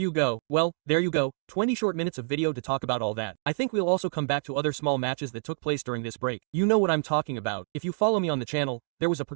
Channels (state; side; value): silent; left; 60 dB below the other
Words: go. Well, there you go. 20 short minutes of video to talk about all that. I think we'll also come back to other small matches that took place during this break. You know what I'm talking about. If you follow me on the channel, there was a